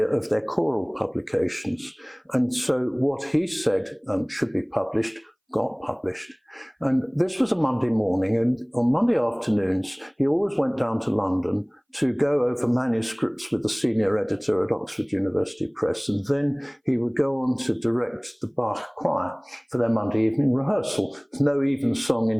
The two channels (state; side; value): identical; both; correlation 1.00